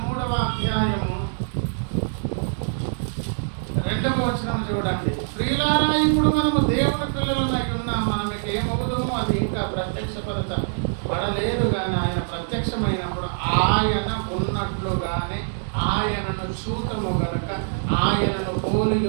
3వ అధ్యాయము 2వ వచనం చూడండి. ప్రియులారా, ఇప్పుడు మనము దేవుని పిల్లలమై ఉన్నాం, మనకి ఏమవుతుందో అది ఇంకా ప్రత్యక్షపరచబడలేదు కానీ ఆయన ప్రత్యక్షమైనప్పుడు ఆయన ఉన్నట్లుగానే ఆయనను చూతము గనుక ఆయనను పోలి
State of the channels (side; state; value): left; silent; digital silence